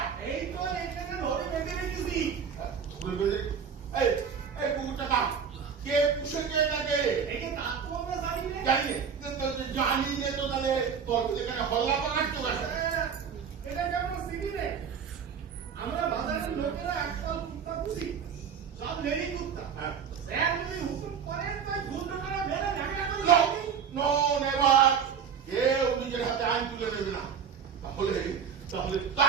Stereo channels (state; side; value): quieter; left; 7.0 dB